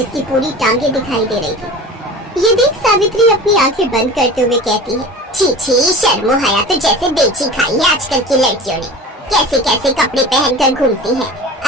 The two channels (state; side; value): normal; both; correlation 0.36